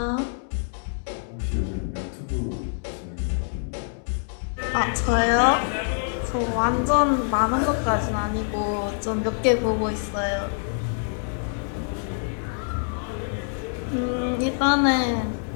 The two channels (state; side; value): silent; right; 61 dB below the other